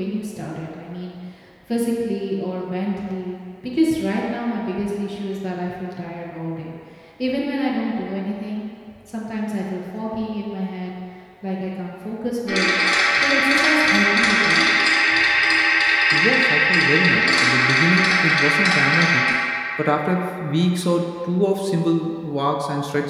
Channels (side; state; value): both; identical; correlation 1.00